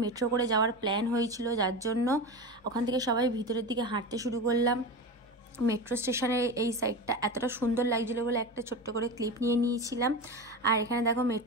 মেট্রো করে যাওয়ার প্ল্যান হয়েছিল, যার জন্য ওখান থেকে সবাই ভিতরের দিকে হাঁটতে শুরু করলাম। মেট্রো স্টেশনের এই সাইডটা এতটা সুন্দর লাগছিলো বলে একটা ছোট্ট করে ক্লিপ নিয়ে নিয়েছিলাম। আর এখানে দেখো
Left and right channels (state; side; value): normal; both; correlation 0.24